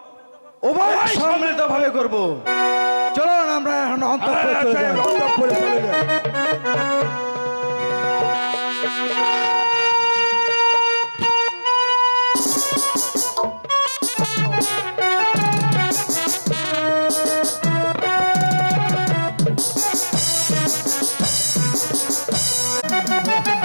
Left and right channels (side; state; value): both; inverted; correlation -1.00